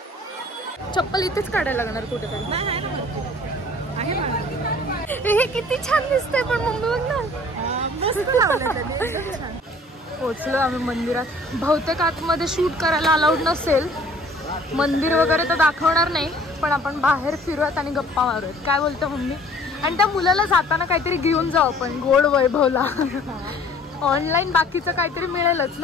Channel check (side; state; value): both; normal; correlation 0.53